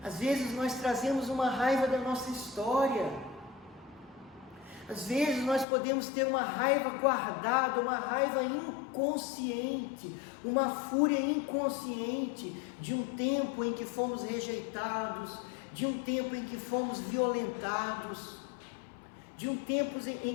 Às vezes nós trazemos uma raiva da nossa história. Às vezes nós podemos ter uma raiva guardada, uma raiva inconsciente, uma fúria inconsciente de um tempo em que fomos rejeitados, de um tempo em que fomos violentados, de um tempo em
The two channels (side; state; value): right; drops out; at 5.7 s